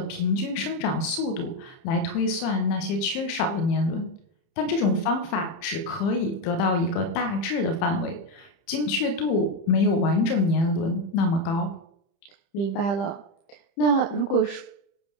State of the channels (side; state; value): right; late; 30 ms